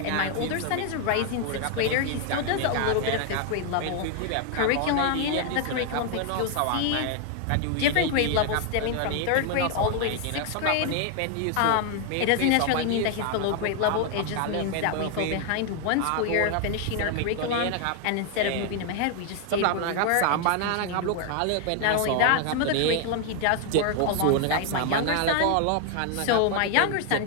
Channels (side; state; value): both; different; correlation 0.00